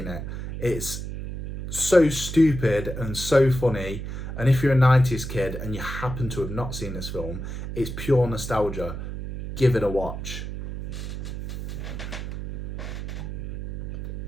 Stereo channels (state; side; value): noise; right; hum, 6 dB below the sound